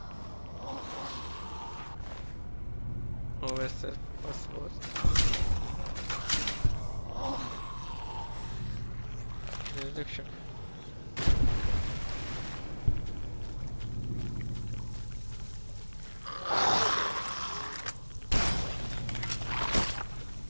Overseer password. Nézzük csak.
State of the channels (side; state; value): both; inverted; correlation -1.00